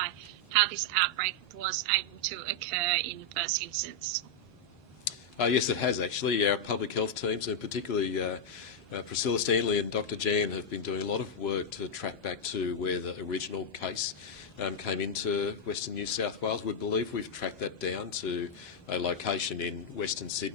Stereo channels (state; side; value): normal; both; correlation -0.02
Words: how this outbreak was able to occur in the first instance? Yes, it has actually. Our public health teams, and particularly Priscilla Stanley and Dr. Jan, have been doing a lot of work to track back to where the original case came into Western New South Wales. We believe we've tracked that down to a location in Western